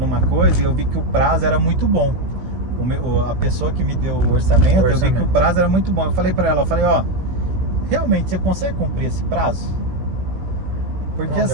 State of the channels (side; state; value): left; late; 16 ms